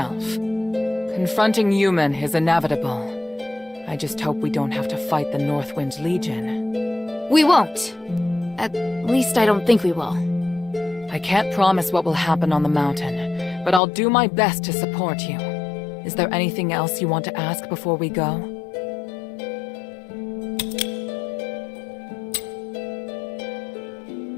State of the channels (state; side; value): drops out; right; at 13.8 s